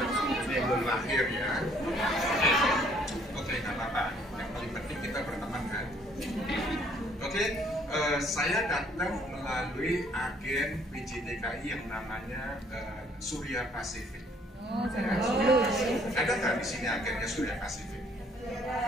Ini belum lahir ya. Oke, nggak apa-apa. Yang paling penting kita berteman kan. Oke, saya datang melalui agen PJDKI yang namanya Surya Pacific. Ada nggak di sini agennya Surya Pacific?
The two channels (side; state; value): both; normal; correlation 0.62